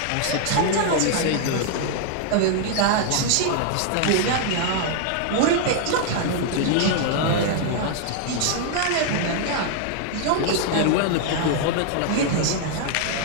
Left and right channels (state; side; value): different; both; correlation 0.00